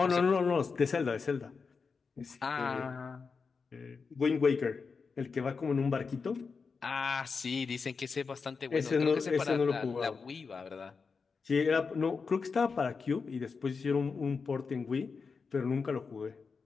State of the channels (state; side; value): quieter; right; 5.1 dB